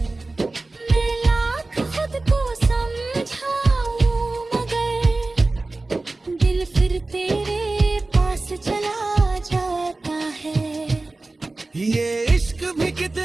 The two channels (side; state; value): left; quieter; 3.2 dB